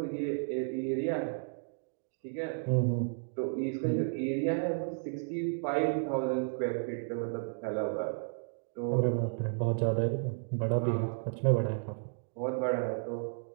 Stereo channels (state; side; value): silent; left; digital silence